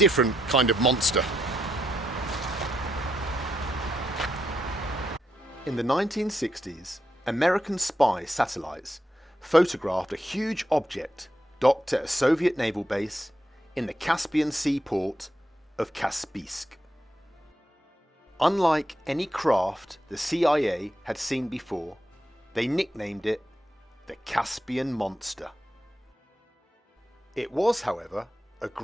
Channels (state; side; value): normal; both; correlation 0.82